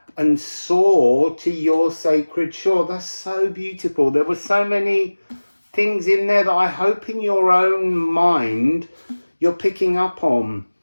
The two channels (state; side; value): inverted; both; correlation -1.00